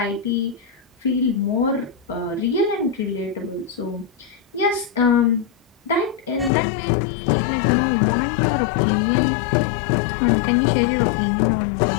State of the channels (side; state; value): right; drops out; at 6.5 s